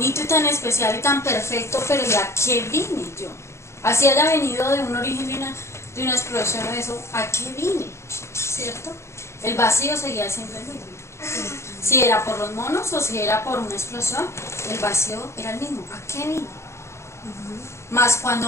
y tan especial y tan perfecto, pero ¿y a qué vine yo? Así haya venido de un origen de una explosión o eso, ¿a qué vine? ¿Cierto? El vacío seguía siendo el mismo. Si era por los monos o si era por una explosión, el vacío era el mismo. ¿A qué vine? Más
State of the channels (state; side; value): late; right; 0.13 ms